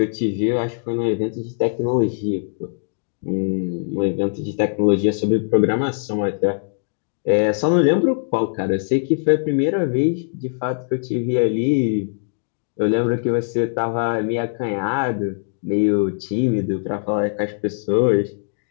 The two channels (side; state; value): right; silent; digital silence